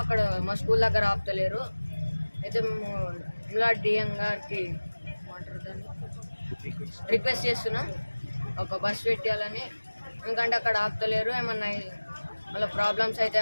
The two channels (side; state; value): both; inverted; correlation -1.00